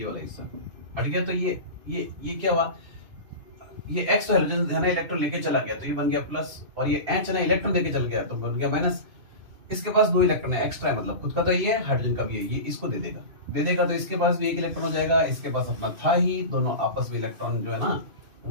वाला हिस्सा हट गया, तो ये क्या हुआ, ये X तो हाइड्रोजन है ना इलेक्ट्रॉन लेके चला गया, तो ये बन गया प्लस, और ये H है ना इलेक्ट्रॉन लेके चल गया, तो बन गया माइनस। इसके पास 2 इलेक्ट्रॉन है, एक्स्ट्रा है, मतलब खुद का तो ये है, हाइड्रोजन का भी है, ये इसको दे देगा तो इसके पास भी 1 इलेक्ट्रॉन हो जाएगा, इसके पास अपना था ही, दोनों आपस में इलेक्ट्रॉन जो है ना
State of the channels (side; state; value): left; late; 2.5 ms